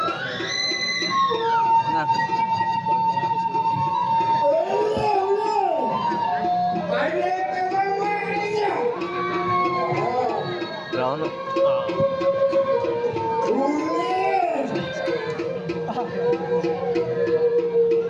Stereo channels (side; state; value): both; identical; correlation 1.00